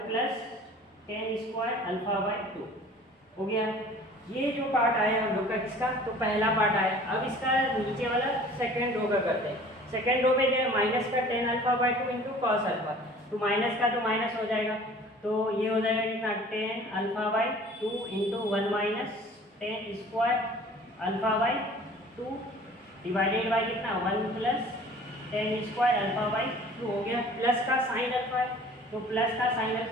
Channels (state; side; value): normal; both; correlation 0.48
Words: plus tan square alpha by two हो गया। ये जो पार्ट आया हम लोग का किसका, तो पहला पार्ट आया। अब इसका नीचे वाला सेकेंड रो का करते हैं। सेकेंड रो पे क्या माइनस का tan alpha by two into cos alpha, तो माइनस का तो माइनस हो जाएगा, तो ये हो जाएगा कितना ten alpha by two into 1 minus tan square alpha by two divided by कितना 1 plus tan square alpha by two हो गया। प्लस का साइन अल्फा है, तो प्लस का साइन